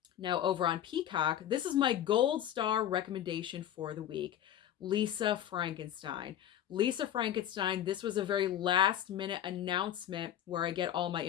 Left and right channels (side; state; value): right; quieter; 11.0 dB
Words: Now, over on Peacock, this is my gold star recommendation for the week. Lisa Frankenstein. Lisa Frankenstein, this was a very last minute announcement where I get all my